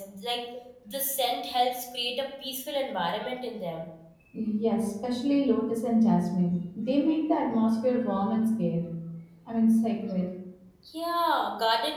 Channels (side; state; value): both; identical; correlation 1.00